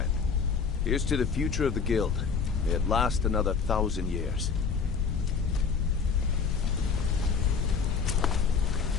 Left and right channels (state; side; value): quieter; right; 5.7 dB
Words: Here's to the future of the guild. May it last another 1,000 years.